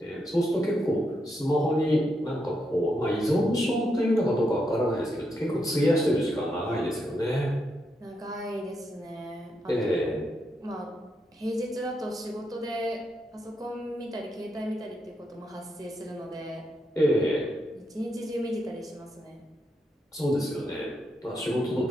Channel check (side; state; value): both; normal; correlation 0.81